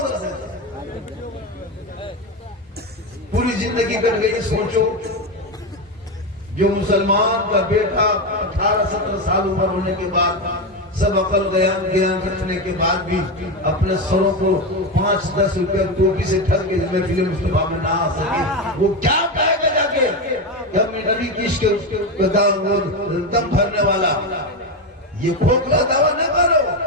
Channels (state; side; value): normal; both; correlation 0.14